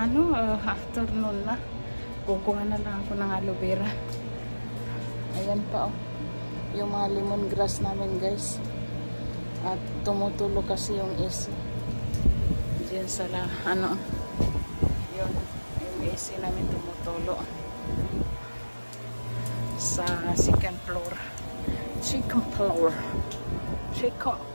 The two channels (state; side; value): inverted; both; correlation -1.00